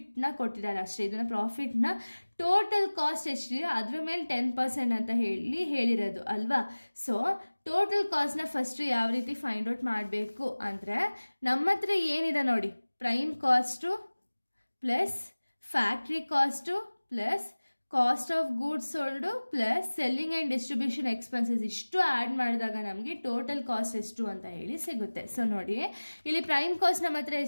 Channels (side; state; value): both; inverted; correlation -1.00